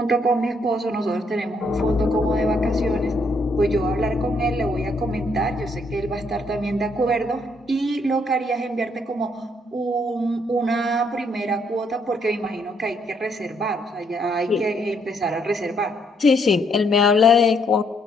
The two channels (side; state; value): both; normal; correlation 0.71